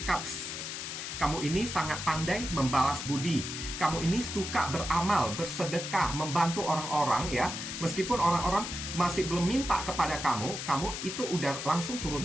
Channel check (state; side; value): noise; left; hiss, 6 dB below the sound